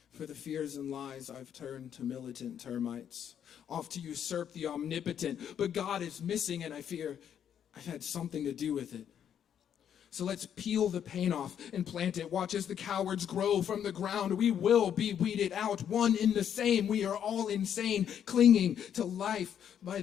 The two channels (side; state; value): right; quieter; 9.0 dB